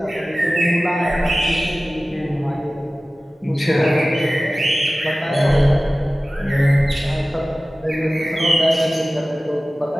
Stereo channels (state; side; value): normal; both; correlation 0.97